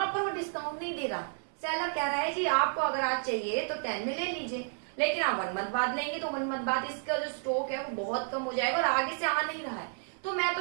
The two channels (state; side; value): silent; left; 57 dB below the other